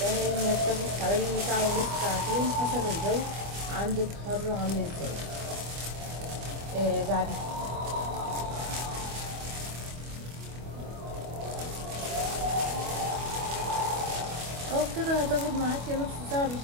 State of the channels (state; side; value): late; left; 25 ms